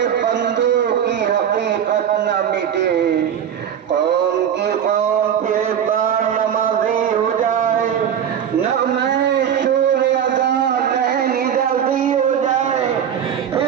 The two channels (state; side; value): quieter; left; 8.9 dB